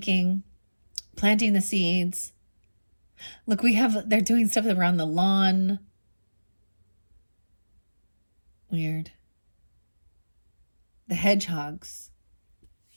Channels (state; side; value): inverted; both; correlation -1.00